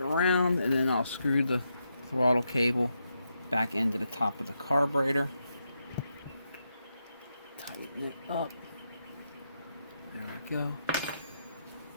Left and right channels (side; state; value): both; inverted; correlation -0.83